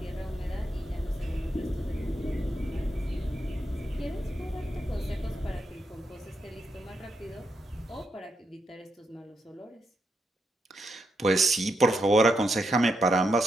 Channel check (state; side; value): normal; both; correlation 0.82